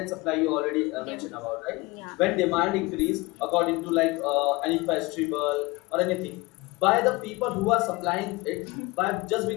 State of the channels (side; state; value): right; quieter; 23.2 dB